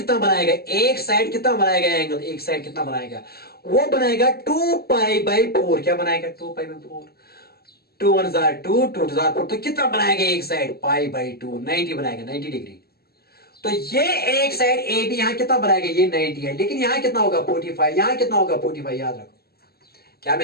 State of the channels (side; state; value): right; late; 0.45 ms